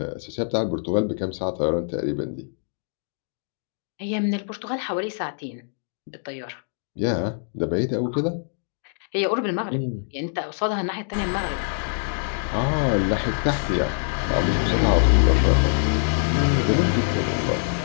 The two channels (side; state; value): right; silent; digital silence